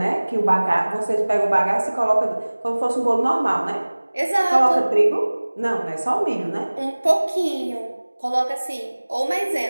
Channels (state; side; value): inverted; both; correlation -1.00